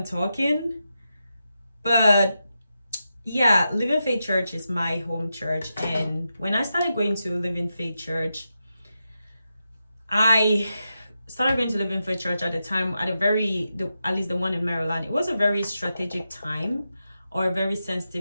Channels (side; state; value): both; inverted; correlation -0.88